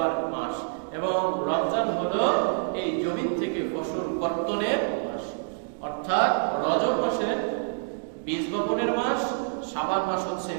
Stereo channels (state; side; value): silent; left; digital silence